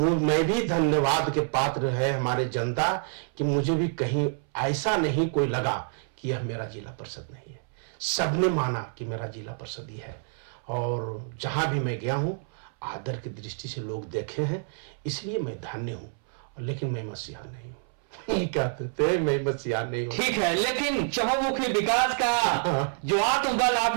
भी धन्यवाद के पात्र है हमारे जनता कि मुझे भी कहीं ऐसा नहीं कोई लगा कि यह मेरा जिला परिषद नहीं है। सबने माना कि मेरा जिला परिषद ही है, और जहां भी मैं गया हूं आदर की दृष्टि से लोग देखे हैं, इसलिए मैं धन्य हूं। लेकिन मैं मसीहा नहीं हूं। कहते थे मैं मसीहा नहीं हूं। ठीक है, लेकिन चहुमुखी विकास का जो आत्मबल आप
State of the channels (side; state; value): left; silent; 60 dB below the other